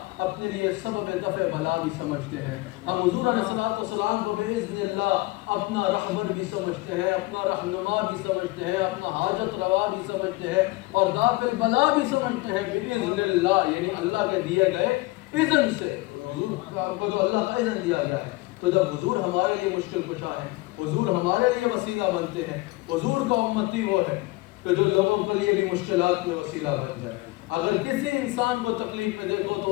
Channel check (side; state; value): right; quieter; 21.3 dB